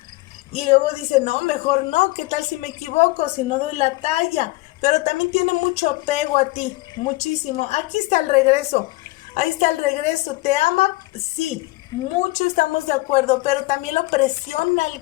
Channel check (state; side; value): quieter; right; 21.2 dB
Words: Y luego dice, no, mejor no, ¿qué tal si me equivoco, si no doy la talla? Pero también tiene mucho apego a ti, muchísimo. Aquí está el regreso, ahí está el regreso. ¿Te ama? Sí, mucho estamos de acuerdo, pero también lo presiona el